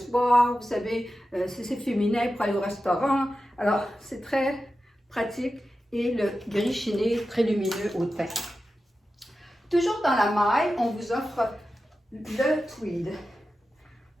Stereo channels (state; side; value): normal; both; correlation 0.92